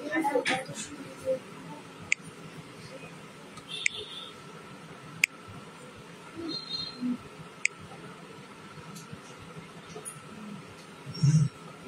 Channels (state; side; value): identical; both; correlation 1.00